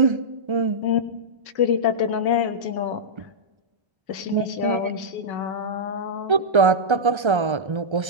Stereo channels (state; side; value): late; left; 1.3 ms